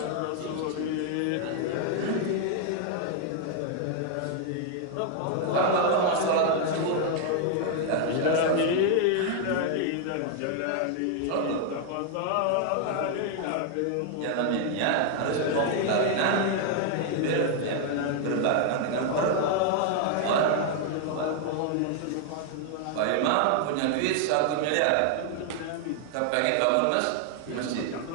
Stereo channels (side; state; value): both; different; correlation 0.00